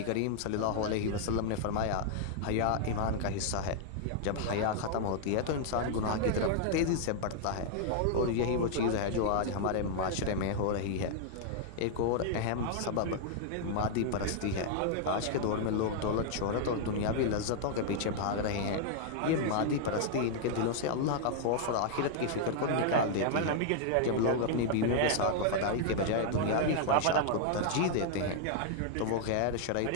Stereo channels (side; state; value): both; different; correlation -0.01